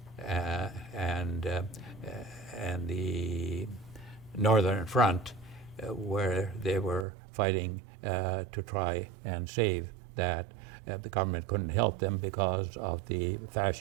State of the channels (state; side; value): drops out; left; at 7.1 s